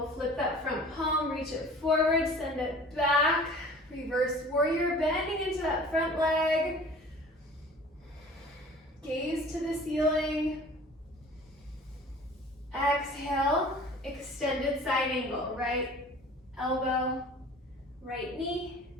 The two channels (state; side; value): normal; both; correlation 0.45